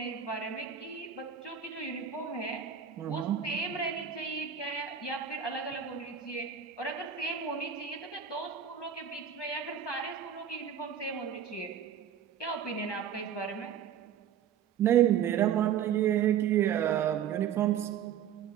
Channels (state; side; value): quieter; left; 8.6 dB